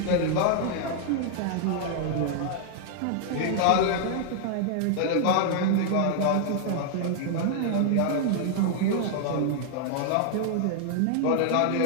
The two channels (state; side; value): different; both; correlation 0.00